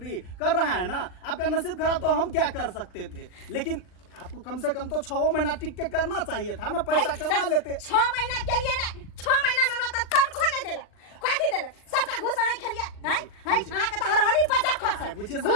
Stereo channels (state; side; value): late; right; 39 ms